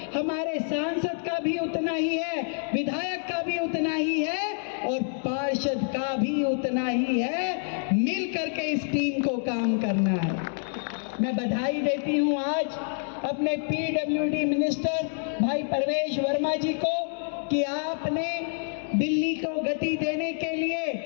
हमारे सांसद का भी उतना ही है, विधायक का भी उतना ही है, और पार्षद का भी उतना ही है। मिल करके इस टीम को काम करना है। मैं बधाई देती हूं आज अपने पीडब्ल्यूडी मिनिस्टर भाई परवेश वर्मा जी को, कि आपने दिल्ली को गति देने के लिए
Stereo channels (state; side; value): silent; right; 59 dB below the other